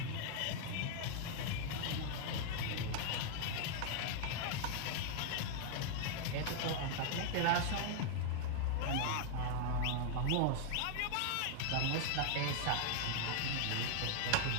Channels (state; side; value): different; both; correlation 0.00